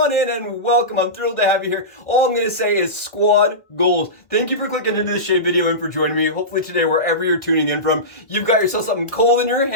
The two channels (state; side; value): late; right; 1.6 ms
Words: in and welcome. I'm thrilled to have you here. All I'm going to say is squad goals. Thank you for clicking into the shave video and for joining me. Hopefully today, wherever you're tuning in from, you've got yourself something cold in your